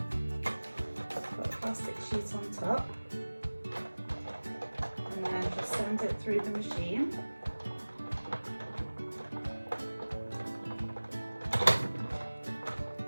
put a plastic sheet on top, and then just send it through the machine.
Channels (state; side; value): inverted; both; correlation -1.00